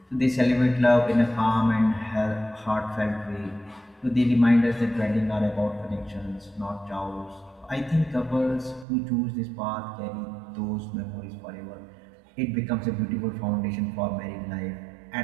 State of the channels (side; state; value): left; drops out; at 8.8 s